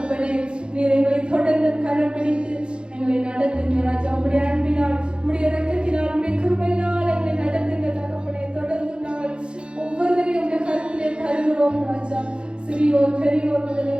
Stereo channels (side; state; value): left; late; 0.053 ms